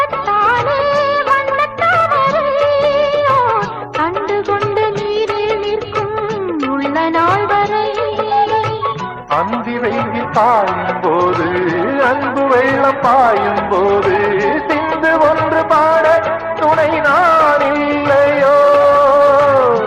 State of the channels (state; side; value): identical; both; correlation 1.00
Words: அந்தி வெயில் பாயும் போது அன்பு வெள்ளம் பாயும் போது சிந்து ஒன்று பாட துணை நான் இல்லையோ